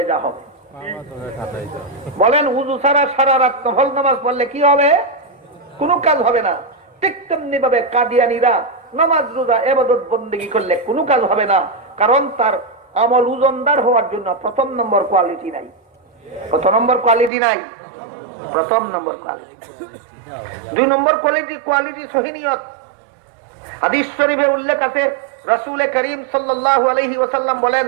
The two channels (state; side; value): drops out; left; at 17.3 s